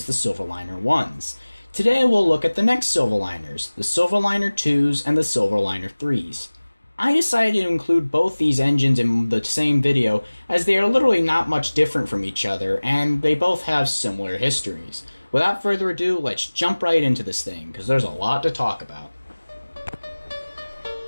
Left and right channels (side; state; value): both; inverted; correlation -1.00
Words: the Silverliner IIs. Today we'll look at the next Silverliners, the Silverliner IIs and the Silverliner IIIs. I decided to include both these engines in the same video as they are literally not much different from each other and they both have similar histories. Without further ado, let's jump right into this thing because there's a lot to talk about.